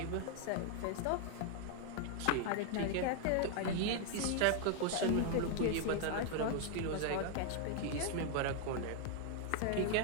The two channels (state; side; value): different; both; correlation 0.00